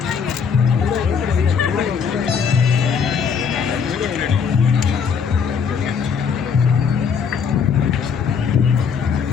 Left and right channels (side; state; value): right; quieter; 6.4 dB